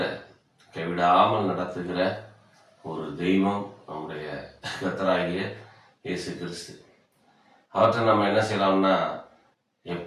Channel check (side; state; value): both; identical; correlation 1.00